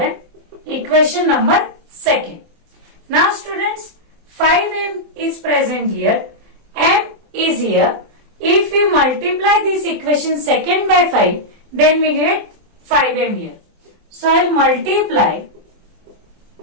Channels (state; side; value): late; left; 24 ms